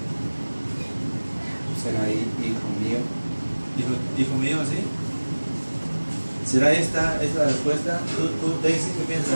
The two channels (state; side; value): inverted; both; correlation -1.00